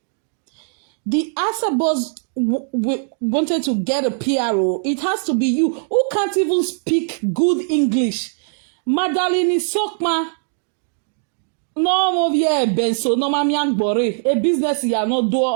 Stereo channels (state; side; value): silent; left; digital silence